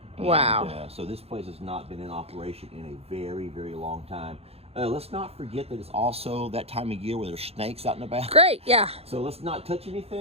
Wow. And, so this place has not been in operation in a very, very long time. Let's not forget that it's also that time of year where there's snakes out in the back. Great, yeah. So let's not touch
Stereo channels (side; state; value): left; late; 0.29 ms